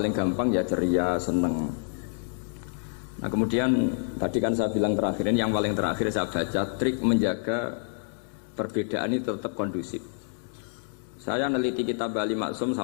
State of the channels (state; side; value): silent; right; digital silence